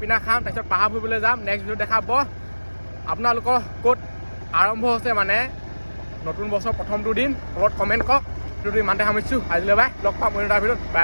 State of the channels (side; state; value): both; inverted; correlation -1.00